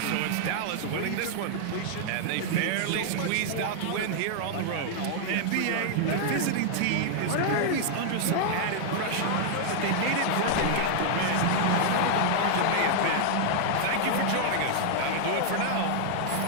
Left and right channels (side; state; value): both; different; correlation -0.01